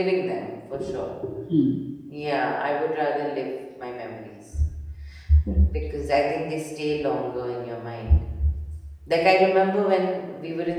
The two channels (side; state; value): both; identical; correlation 1.00